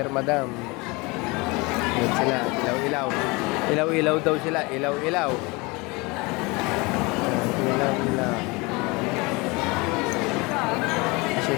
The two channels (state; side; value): quieter; right; 25.7 dB